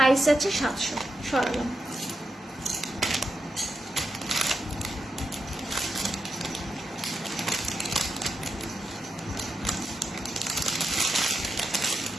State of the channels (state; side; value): normal; both; correlation 0.86